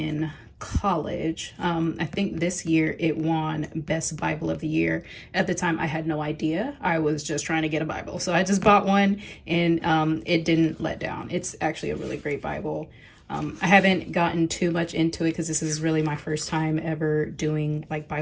college. I think this year it won Best Bible of the Year. At the time, I had no idea. I was just trying to get a Bible. So I just bought one and it didn't let down. It's actually a really great Bible. I haven't gotten too much into it because this is really my first time ever doing like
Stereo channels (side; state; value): both; identical; correlation 1.00